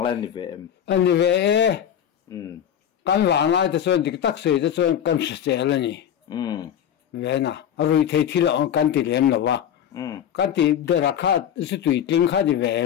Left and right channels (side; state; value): right; quieter; 9.6 dB